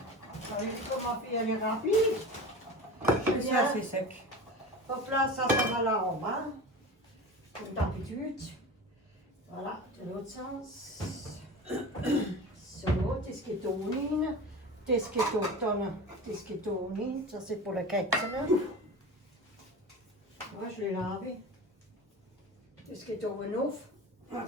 vous savez comment ma fille, elle est rapide. Et ça c'est sec. Hop là, ça va là en bas. Comme d'habitude. Voilà, de l'autre sens. So, das geht ohne. Das geht auch dann. Das geht ohne. Ça, c'est pour le Kätzchen. Moi, je l'ai lavé. Das geht oben auf.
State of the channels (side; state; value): both; normal; correlation 0.31